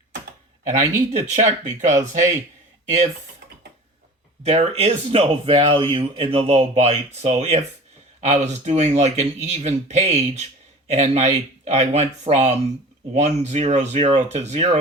And I need to check because, hey, if there is no value in the low byte, so if I was doing like an even page and I went from 100 to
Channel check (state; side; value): normal; both; correlation 0.39